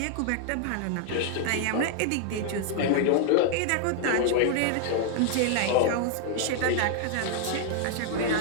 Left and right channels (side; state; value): both; different; correlation 0.00